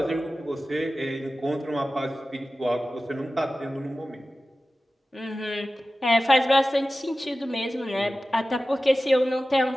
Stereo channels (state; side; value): normal; both; correlation 0.95